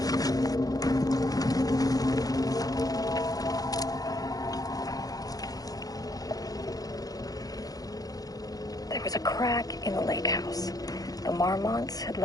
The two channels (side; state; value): right; late; 0.18 ms